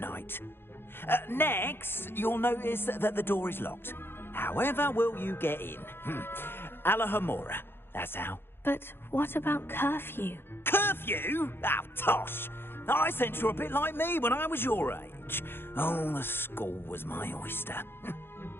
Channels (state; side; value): late; right; 0.11 ms